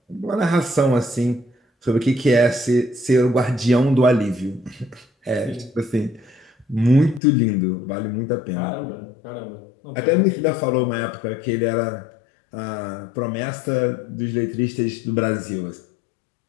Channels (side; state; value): right; drops out; at 7.2 s